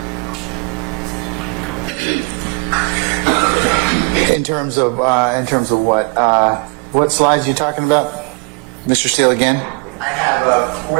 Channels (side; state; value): left; quieter; 34.3 dB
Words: In terms of what slides are you talking about, Mr. Steele, again? I have